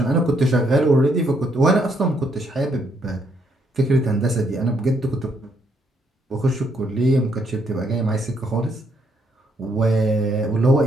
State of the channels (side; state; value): both; normal; correlation 0.73